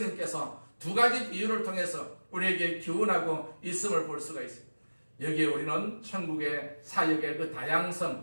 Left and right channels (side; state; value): both; inverted; correlation -1.00